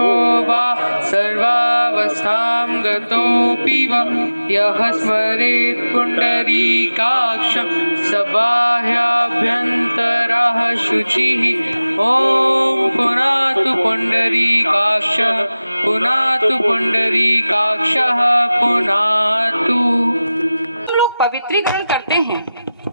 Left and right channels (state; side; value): inverted; both; correlation -0.96